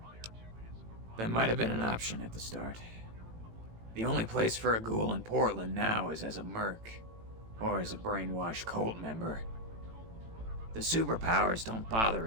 that might have been an option at the start. The only place for a ghoul in Portland now is as a merc, or as a brainwashed cult member. The superpowers don't bother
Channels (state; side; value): late; left; 18 ms